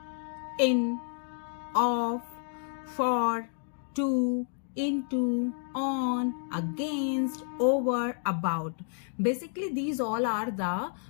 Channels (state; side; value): silent; right; 58 dB below the other